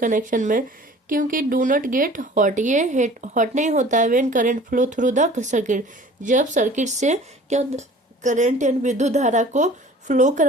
में, क्योंकि डू नॉट गेट हॉट, ये हॉट नहीं होता है when current flow through the circuit, जब सर्किट से क्या करंट यानी विद्युत धारा को फ्लो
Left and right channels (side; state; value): both; normal; correlation 0.47